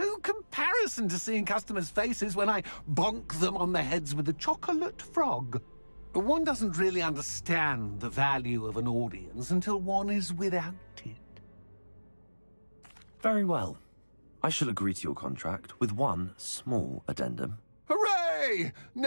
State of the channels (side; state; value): both; inverted; correlation -1.00